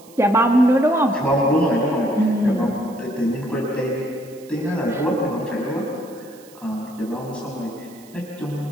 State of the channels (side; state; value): right; noise; hiss, 24 dB below the sound